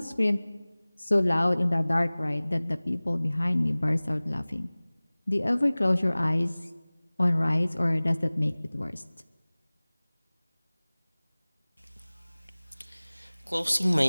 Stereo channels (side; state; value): both; inverted; correlation -1.00